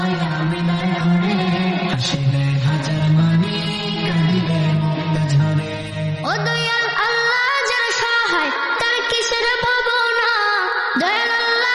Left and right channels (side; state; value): both; identical; correlation 1.00